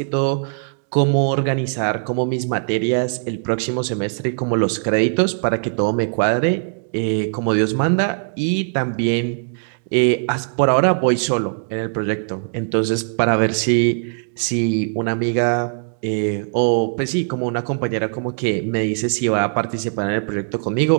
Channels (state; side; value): silent; left; digital silence